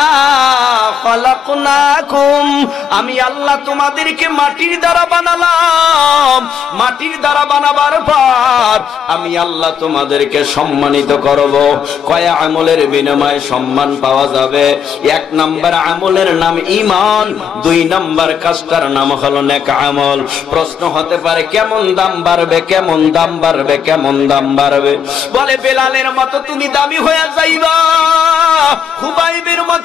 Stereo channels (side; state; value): right; quieter; 7.7 dB